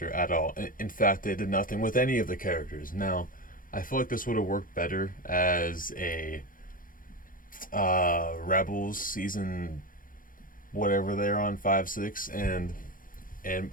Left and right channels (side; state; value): right; late; 0.40 ms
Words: at all. In fact, they did nothing with any of the characters. Now, I feel like this would have worked better as a Rebels season, whatever they're on, 5, 6, and